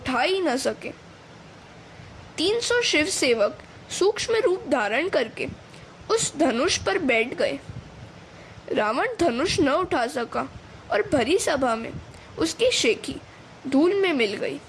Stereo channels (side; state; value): both; identical; correlation 1.00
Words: ही न सके। 300 शिव सेवक सूक्ष्म रूप धारण करके उस धनुष पर बैठ गए। रावण धनुष न उठा सका और भरी सभा में उसकी शेखी धूल में मिल गई।